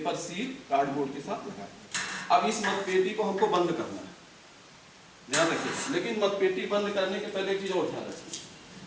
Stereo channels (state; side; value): identical; both; correlation 1.00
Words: सील कार्डबोर्ड के साथ लगा दिया। अब इस मतपेटी को हमको बंद करना है, ध्यान रखिए। लेकिन मतपेटी बंद करने के पहले एक चीज और ध्यान रखिए,